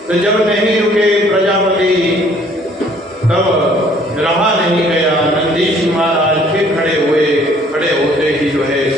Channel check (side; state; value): both; normal; correlation 0.59